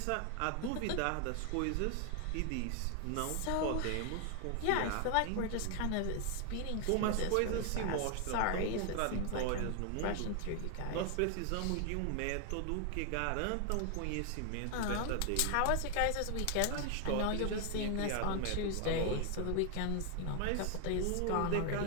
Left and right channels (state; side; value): different; both; correlation 0.00